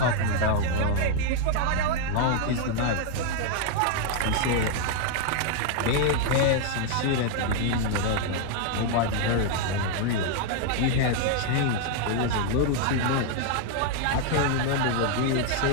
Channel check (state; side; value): different; both; correlation 0.00